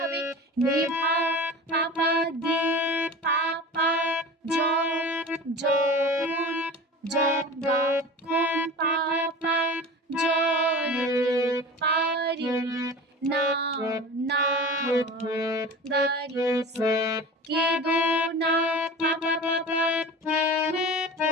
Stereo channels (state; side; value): normal; both; correlation 0.35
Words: হবে? নিভা পাপা দি পাপা জ জ গা কোন পাপা জ পারি না না গারি সা কে দো না পাপা পাপা